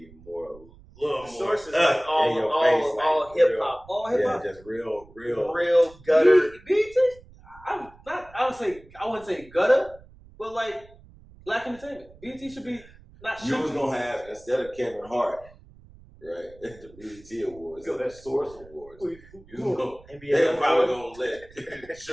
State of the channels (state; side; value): noise; right; rumble, 23 dB below the sound